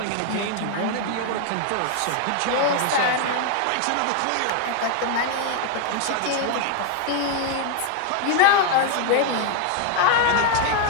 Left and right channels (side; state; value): both; different; correlation 0.00